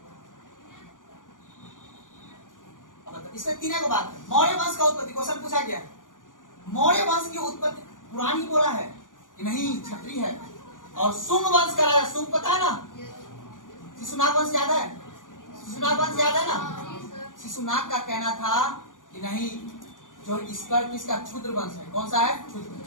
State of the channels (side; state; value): right; late; 0.88 ms